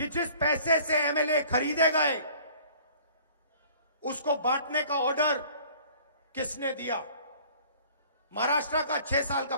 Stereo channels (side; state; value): both; inverted; correlation -0.52